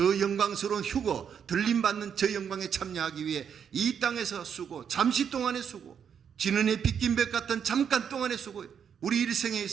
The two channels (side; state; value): left; quieter; 7.8 dB